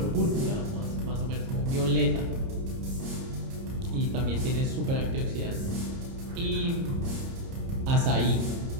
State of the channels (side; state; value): left; late; 30 ms